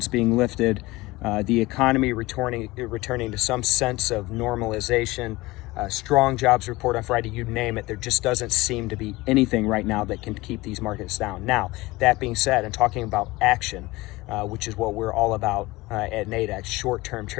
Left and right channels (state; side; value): quieter; right; 20.6 dB